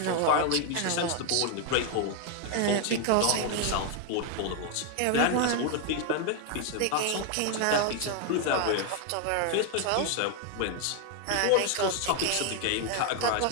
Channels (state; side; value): different; both; correlation 0.01